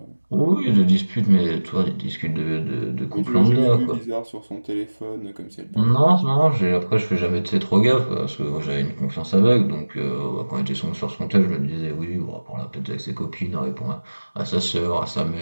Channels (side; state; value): both; inverted; correlation -1.00